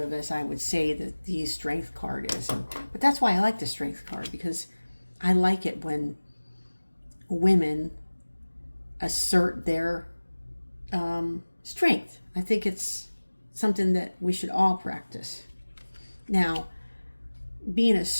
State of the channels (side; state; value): both; inverted; correlation -1.00